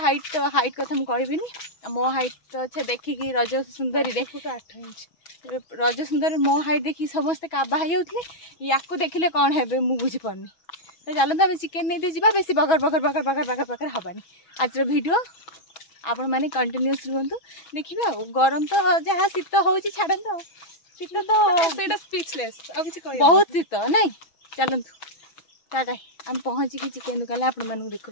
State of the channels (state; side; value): late; right; 6.1 ms